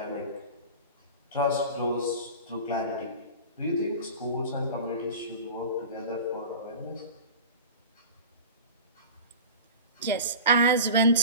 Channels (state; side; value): inverted; both; correlation -0.34